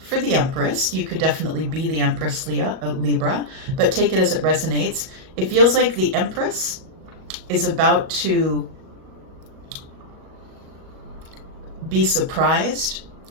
for the Empress. You could definitely be the Empress Libra, but take it as it resonates. It feels like the Empress is about to be surprised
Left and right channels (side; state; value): left; late; 37 ms